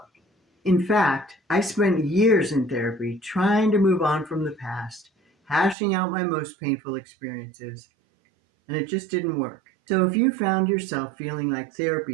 In fact, I spent years in therapy trying to move on from the past, hashing out my most painful experiences, and it just didn't work. So, if you found yourself feeling like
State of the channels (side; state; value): left; drops out; at 5.8 s